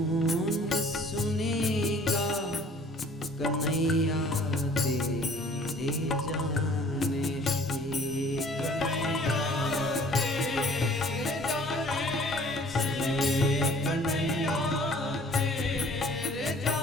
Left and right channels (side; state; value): both; normal; correlation 0.53